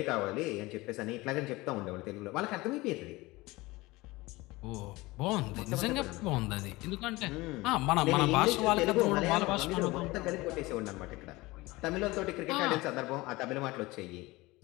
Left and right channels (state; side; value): quieter; right; 21.1 dB